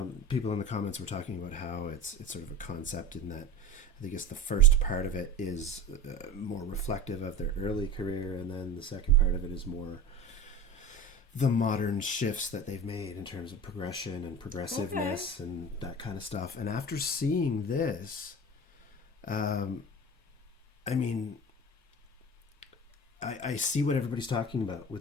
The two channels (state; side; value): normal; both; correlation 0.33